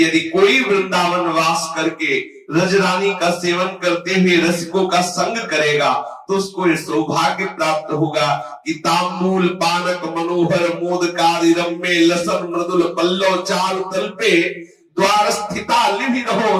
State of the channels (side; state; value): both; identical; correlation 1.00